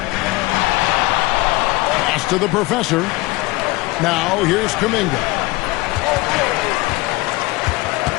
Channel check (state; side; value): quieter; right; 21.7 dB